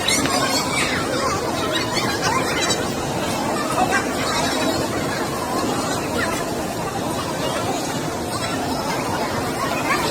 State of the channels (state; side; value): identical; both; correlation 1.00